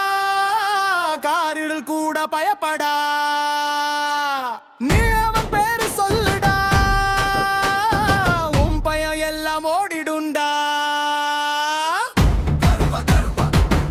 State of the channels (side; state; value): both; identical; correlation 1.00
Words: காரில் கூட பயப்படா. நீ அவன் பேரு சொல்லுடா, உன் பயம் எல்லாம் ஓடிடுண்டா.